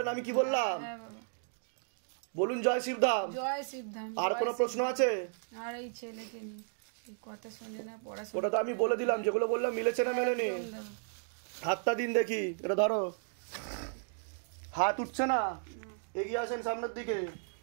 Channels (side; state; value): left; silent; digital silence